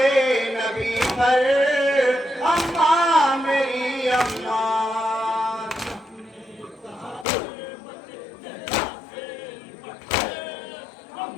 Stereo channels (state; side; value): drops out; right; at 7.2 s